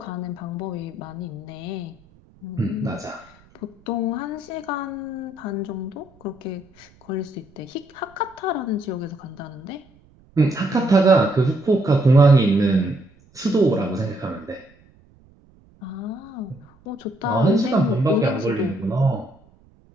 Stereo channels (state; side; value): noise; right; rumble, 29 dB below the sound